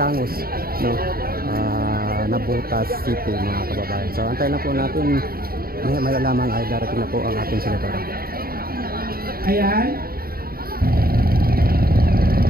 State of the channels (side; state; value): left; late; 0.43 ms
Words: no, Navotas City, mga kababayan. So antayin na po natin, may lamang ay darating na po ang ating senadora. Ayan.